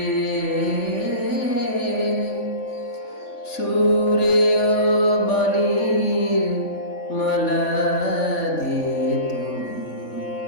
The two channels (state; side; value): late; right; 3.5 ms